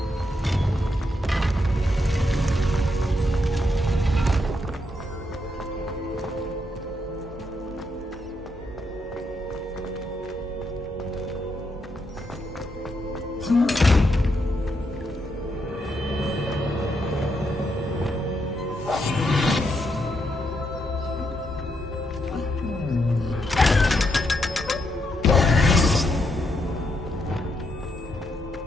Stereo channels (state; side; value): normal; both; correlation 0.79